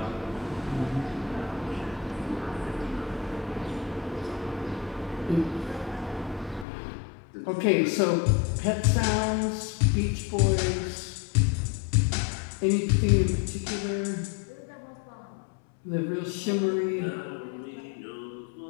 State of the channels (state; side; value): drops out; right; at 6.7 s